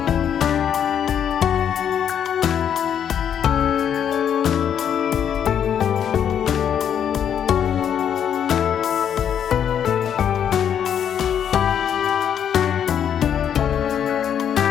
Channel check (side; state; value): right; quieter; 8.8 dB